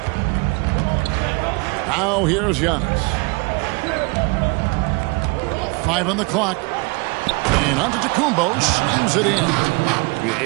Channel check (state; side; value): quieter; left; 28.7 dB